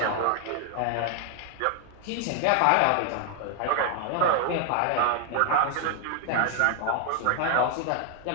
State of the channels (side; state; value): both; different; correlation 0.00